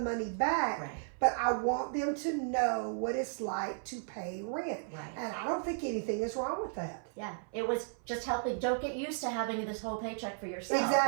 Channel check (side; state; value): left; silent; 55 dB below the other